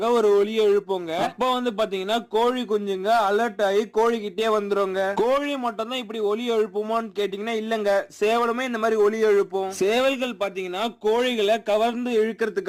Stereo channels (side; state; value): both; identical; correlation 1.00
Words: ஒரு ஒலியை எழுப்புங்க. அப்ப வந்து பாத்தீங்கன்னா கோழி குஞ்சுங்க அலர்ட் ஆகி கோழி கிட்டே வந்துருங்க. கோழி மட்டும் தான் இப்படி ஒலி எழுப்புமான்னு கேட்டீங்கன்னா இல்லங்க, சேவலுமே இந்த மாதிரி ஒலி எழுப்பும். சேவல்கள் பாத்தீங்கன்னா கோழிகளை கவர்ந்து